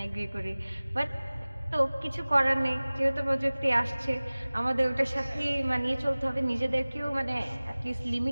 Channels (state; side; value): inverted; both; correlation -0.99